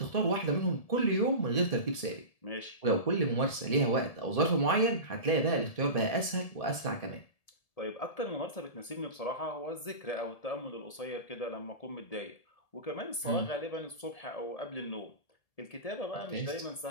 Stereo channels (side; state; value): right; late; 1.7 ms